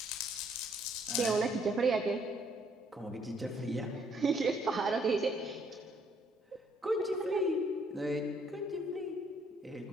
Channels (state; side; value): normal; both; correlation 0.66